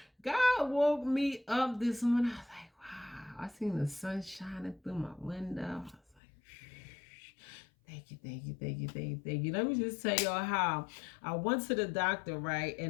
God woke me up this morning. I was like, wow. I seen the sun shining through my window. I was like, thank you, thank you, thank you, thank you, thank you. Let me just tell y'all how I went to the doctor, right?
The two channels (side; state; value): right; drops out; at 6.2 s